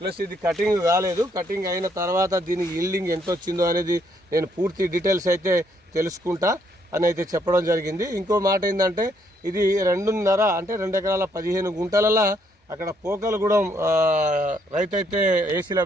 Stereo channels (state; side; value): normal; both; correlation 0.71